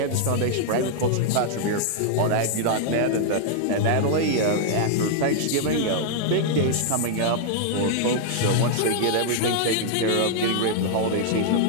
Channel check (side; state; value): both; different; correlation -0.01